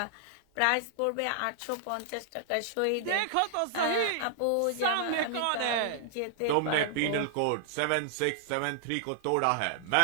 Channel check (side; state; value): both; different; correlation -0.01